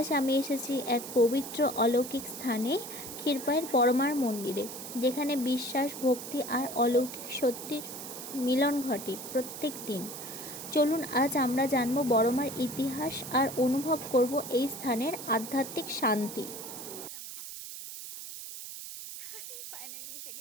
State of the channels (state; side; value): noise; right; hiss, 10 dB below the sound